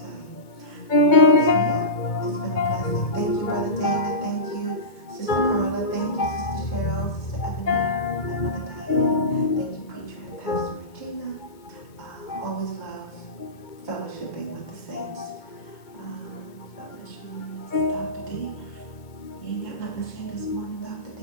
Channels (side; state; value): right; late; 2.2 ms